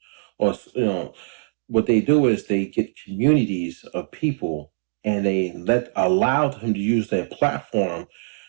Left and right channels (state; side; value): silent; left; digital silence